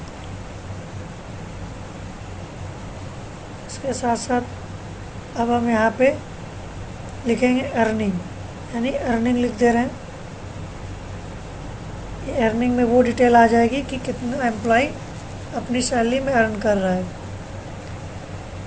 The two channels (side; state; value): both; identical; correlation 1.00